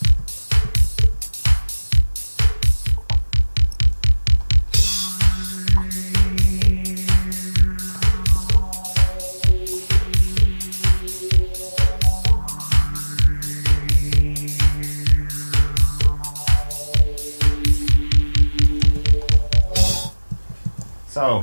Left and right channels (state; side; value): inverted; both; correlation -1.00